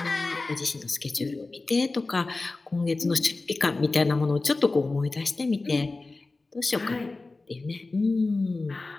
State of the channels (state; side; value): quieter; right; 3.4 dB